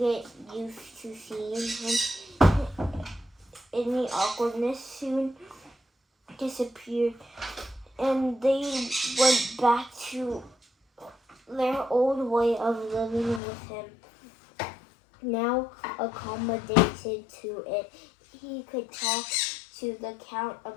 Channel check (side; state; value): right; drops out; at 13.4 s